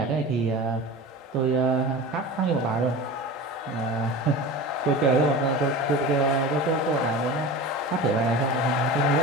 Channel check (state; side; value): normal; both; correlation 0.32